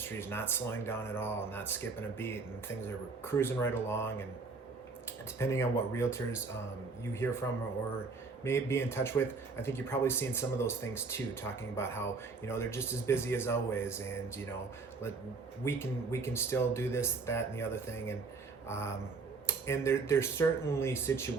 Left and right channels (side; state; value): left; quieter; 4.3 dB